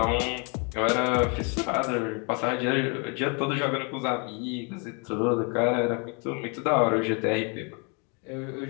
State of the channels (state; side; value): quieter; right; 34.9 dB